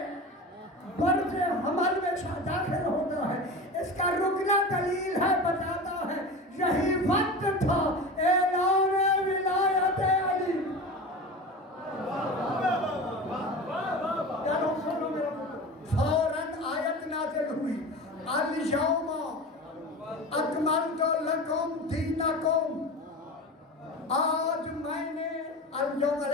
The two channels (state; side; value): normal; both; correlation 0.30